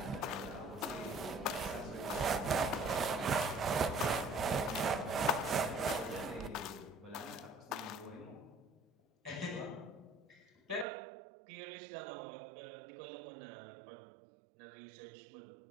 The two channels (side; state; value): left; drops out; at 10.9 s